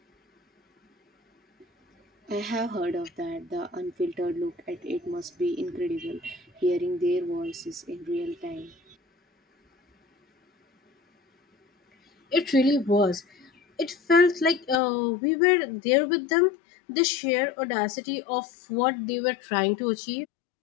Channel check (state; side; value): drops out; right; at 14.8 s